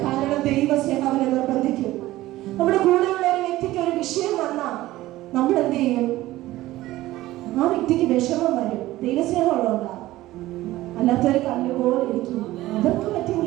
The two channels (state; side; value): quieter; left; 16.5 dB